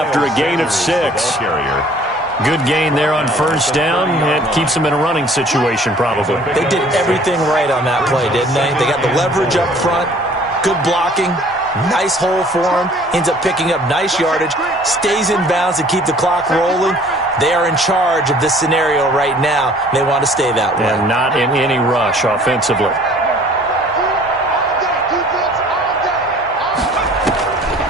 a gain of 6. Good gain there on first down. It keeps them in a running situation probably. They did everything right on that play, didn't they? They got the leverage up front. Good blocking, nice hole for him, ends up picking up nice yardage, stays in bounds to keep the clock rolling. They are in charge of this scenario right now. They want to stay that way. And not in any rush offensively.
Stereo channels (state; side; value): normal; both; correlation 0.53